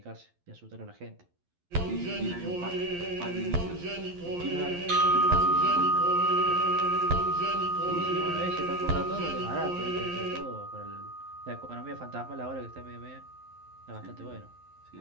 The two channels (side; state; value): left; late; 11 ms